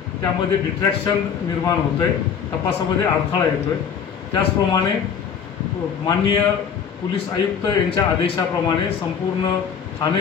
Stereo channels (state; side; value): quieter; right; 7.2 dB